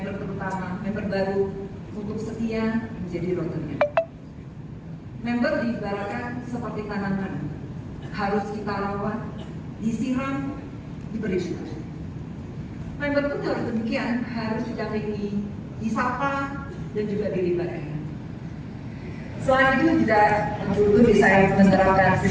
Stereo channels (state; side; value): identical; both; correlation 1.00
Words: terutama member baru, untuk setia menjadi Rotarian. Member diibaratkan seperti tanaman, harus kita rawat, disiram, diberi suhu. Member pun harus demikian, harus didampingi, disapa, dan juga dilibatkan. Selain itu juga dulu saya menerapkan